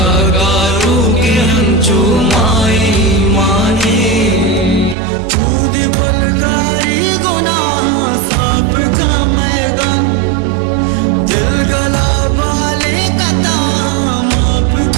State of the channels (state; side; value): drops out; left; at 5.0 s